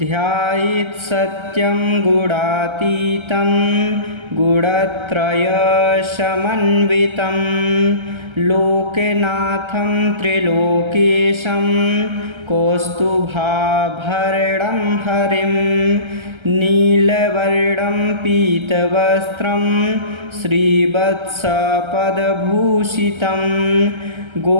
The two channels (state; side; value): late; left; 1.3 ms